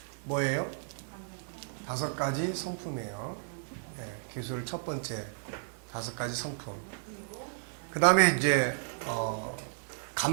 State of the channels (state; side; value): silent; left; digital silence